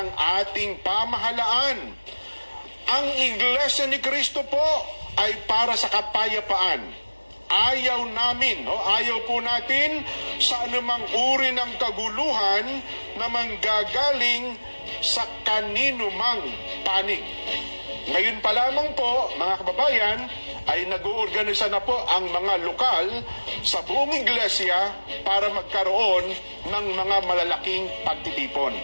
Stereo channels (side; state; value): both; inverted; correlation -1.00